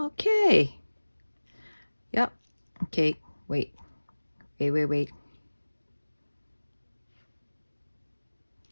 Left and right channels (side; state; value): both; inverted; correlation -1.00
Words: Yep. Okay. Wait. Wait.